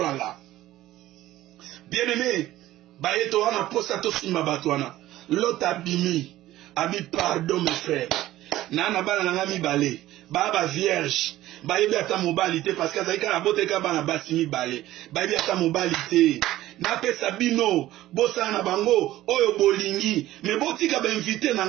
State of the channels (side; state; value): left; quieter; 15.2 dB